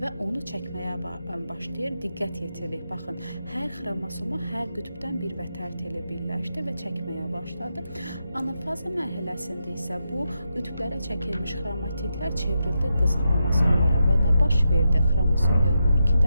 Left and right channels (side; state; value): both; inverted; correlation -0.86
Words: onu çəkməyə başlayır. Diqqət yetirir. Baxın, hər xromosoma hər qütbdən bir vətər teli birləşdi və çəkməyə başladı. Anafaza mərhələsində isə bu qütblərə çəkilmiş xromatidlər çevrildi qız xromosomlara və nə baş verdi? Xromosom yığımı 2